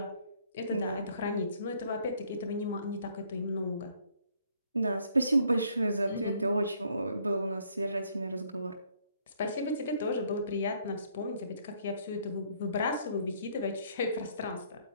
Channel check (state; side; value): inverted; both; correlation -0.65